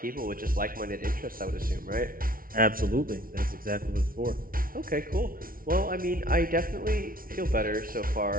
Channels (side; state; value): left; late; 0.42 ms